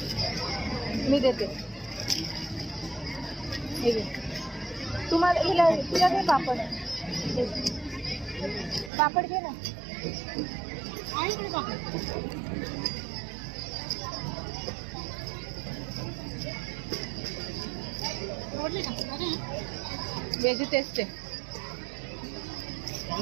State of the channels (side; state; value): left; drops out; at 8.9 s